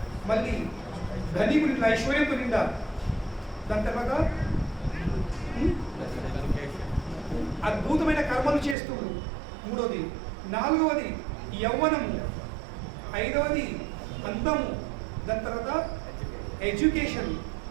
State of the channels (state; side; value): drops out; left; at 8.8 s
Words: మళ్ళీ ధనికుడి ఐశ్వర్యంతో నిండా, దాని తర్వాత అద్భుతమైన కర్మలు చేస్తుడు, మూడవది, నాలుగవది యవ్వనము, ఐదవది అందము, దాని తర్వాత ఎడ్యుకేషన్,